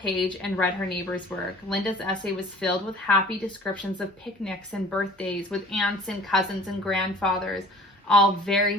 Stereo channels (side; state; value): both; normal; correlation 0.47